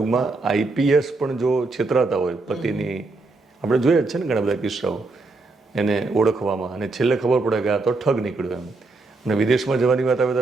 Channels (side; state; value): left; quieter; 3.5 dB